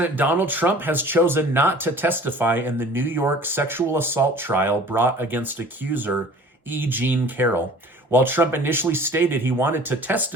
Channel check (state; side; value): normal; both; correlation 0.47